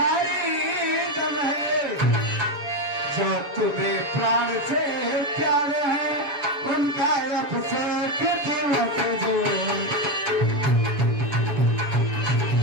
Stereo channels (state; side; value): late; left; 7.1 ms